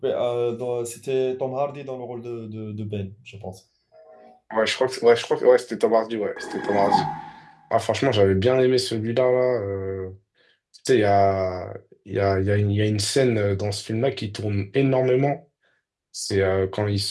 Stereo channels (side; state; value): both; identical; correlation 1.00